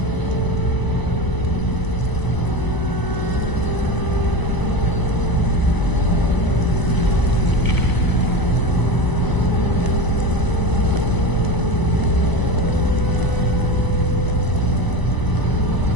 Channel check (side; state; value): right; late; 1.0 ms